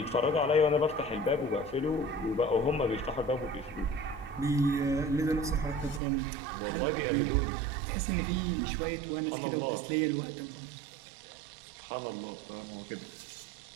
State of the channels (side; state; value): left; drops out; at 6.0 s